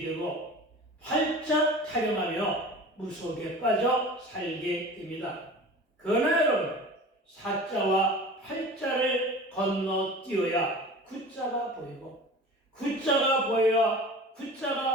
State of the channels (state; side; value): normal; both; correlation 0.38